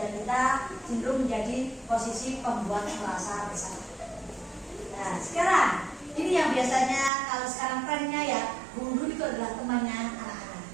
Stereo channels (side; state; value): left; drops out; at 7.1 s